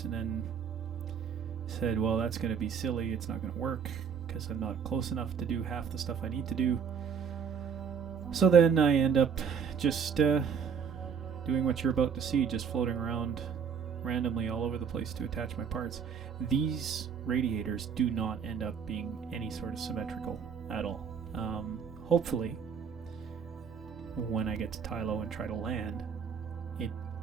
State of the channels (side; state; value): left; quieter; 6.9 dB